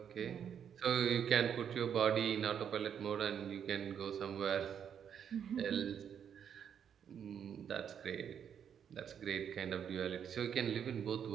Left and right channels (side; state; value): left; quieter; 8.3 dB